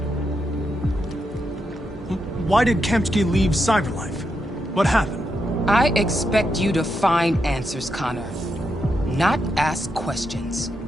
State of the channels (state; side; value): normal; both; correlation 0.83